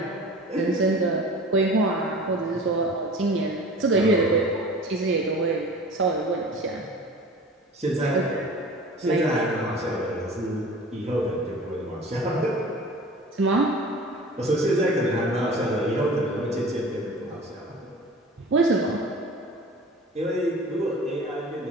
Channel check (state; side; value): normal; both; correlation 0.40